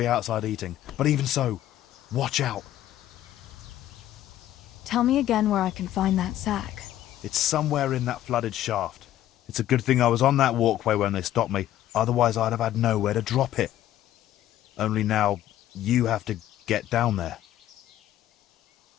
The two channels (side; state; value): right; quieter; 12.9 dB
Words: outside eating. But even so, watch out. Tell me again where I can find that sack. It's somewhere in that flooded shaft. It's a good thing I was on that walkway when they stopped me. Otherwise, I'd have had nowhere to drop it. Only now, you have to get down there.